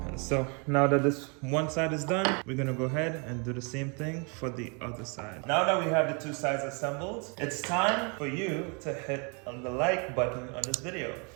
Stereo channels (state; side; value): quieter; left; 34.4 dB